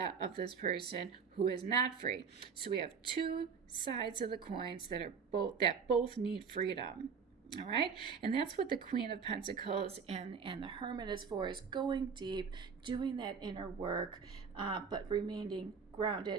of this person who is not free. So we have two sides of the coins that both need freedom. All right, and that's what the Queen of Pentacles and the Hermit is for, is going deep, doing that inner work, but remaining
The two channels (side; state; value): left; quieter; 6.1 dB